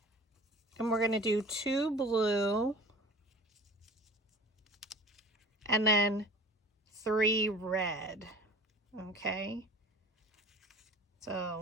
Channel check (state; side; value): normal; both; correlation 0.43